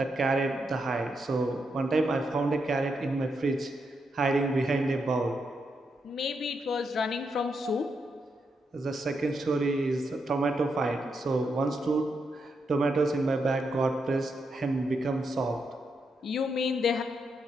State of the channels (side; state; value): both; normal; correlation 0.82